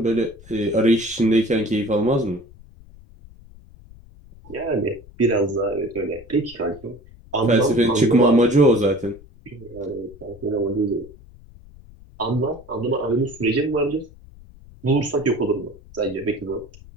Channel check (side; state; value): left; noise; rumble, 22 dB below the sound